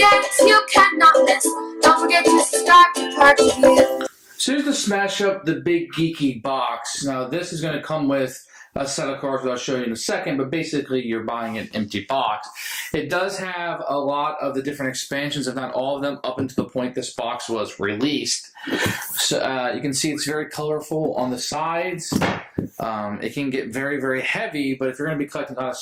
you cannot miss. Don't forget to subscribe to Purge Reviews. So here's the Smash Up the Big Geeky Box. Now this is going to come with a set of cards that I'll show you in a second, but basically you're buying an empty box. It does have a lot of the different expansions, if not all of them, up until the point this box was released. So you can see it's very colorful on the sides. It can get very, very heavy, but if you're going to be collecting a lot of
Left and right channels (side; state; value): both; identical; correlation 1.00